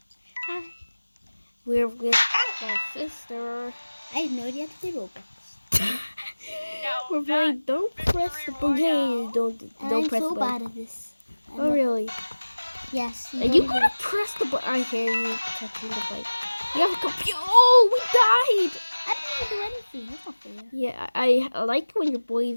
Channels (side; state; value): both; inverted; correlation -1.00